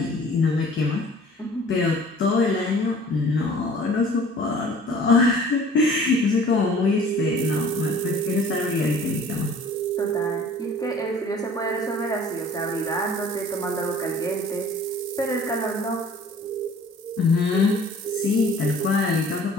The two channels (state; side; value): normal; both; correlation 0.50